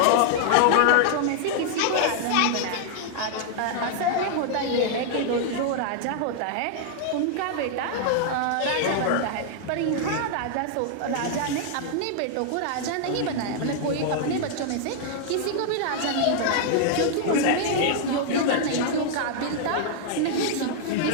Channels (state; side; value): different; both; correlation -0.01